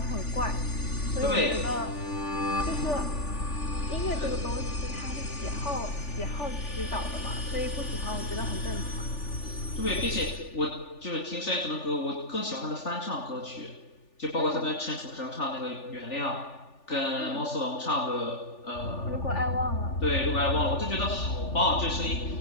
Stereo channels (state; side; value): late; right; 3.4 ms